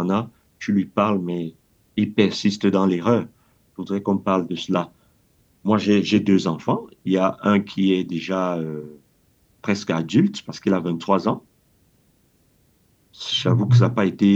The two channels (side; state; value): both; identical; correlation 1.00